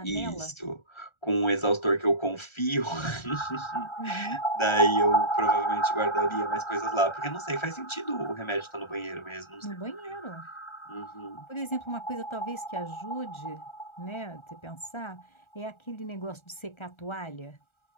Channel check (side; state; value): right; late; 1.3 ms